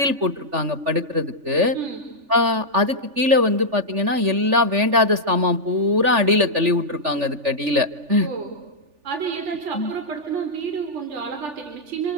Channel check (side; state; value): left; late; 3.4 ms